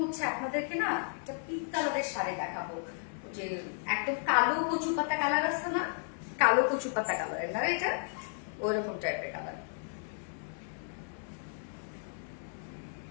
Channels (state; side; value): silent; right; 55 dB below the other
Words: হচ্ছে আপনাদেরকে না একটা পিঙ্ক কালারের শাড়ি দেখাবো, যে একদম কালো কচু পাতা কালার আছে না, কালো কচু পাতা কালারের না, এটা ওইরকম টাইপের কালার।